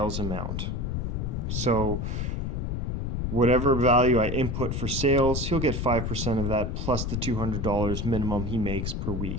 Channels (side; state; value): left; noise; rumble, 2 dB below the sound